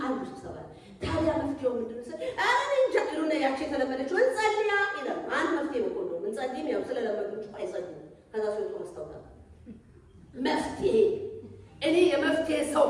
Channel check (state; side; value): identical; both; correlation 1.00